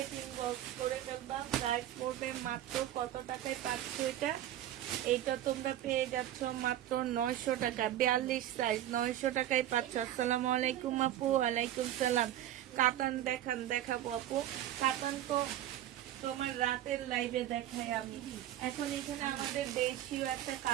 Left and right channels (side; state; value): left; quieter; 12.6 dB